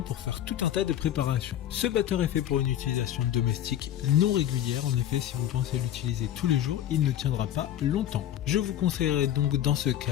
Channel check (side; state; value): right; quieter; 11.5 dB